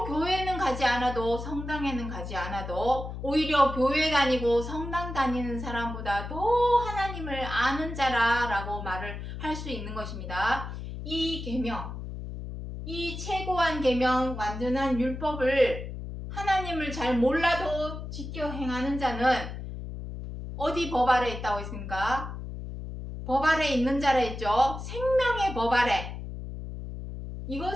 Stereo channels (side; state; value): left; noise; hum, 8 dB below the sound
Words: 교회는 가지 않아도 성당에는 가지 않아도 오히려 교회 다니고 성당 다니는 사람보다 더 하나님을 아는 자라라고 말을 할 수 있는 것입니다. 이 계명, 이 최고한 계명, 완전한 율법을 하나님을 잘 몰라도 지켜 행하는 자는 어디 법 아래 있다고 했습니까? 법 아래 있는 자라 했죠. 생명의 법 아래.